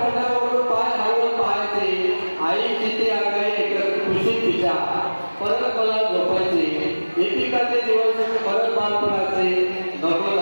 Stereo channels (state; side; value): inverted; both; correlation -1.00